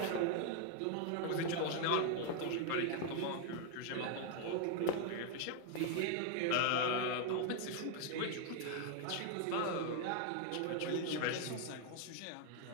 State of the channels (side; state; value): both; different; correlation 0.00